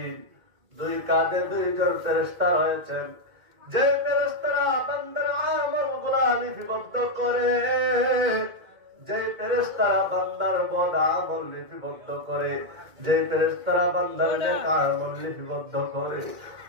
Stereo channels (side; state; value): left; late; 2.1 ms